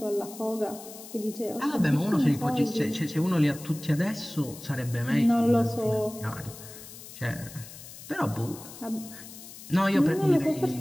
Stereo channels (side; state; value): left; noise; hiss, 15 dB below the sound